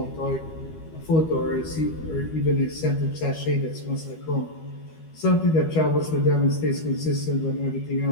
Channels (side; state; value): right; late; 12 ms